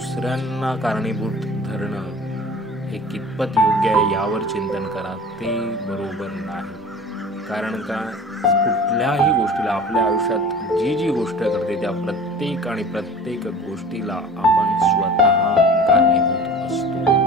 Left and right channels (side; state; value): both; normal; correlation 0.41